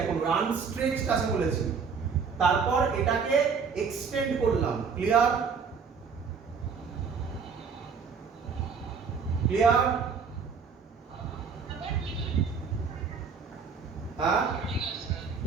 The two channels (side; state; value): left; quieter; 5.8 dB